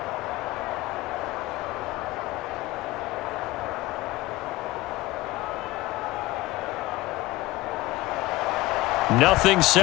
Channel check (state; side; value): quieter; right; 19.1 dB